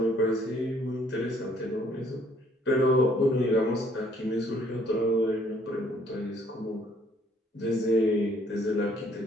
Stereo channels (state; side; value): normal; both; correlation 0.63